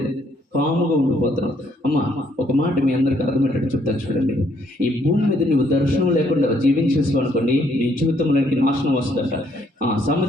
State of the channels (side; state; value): both; normal; correlation 0.68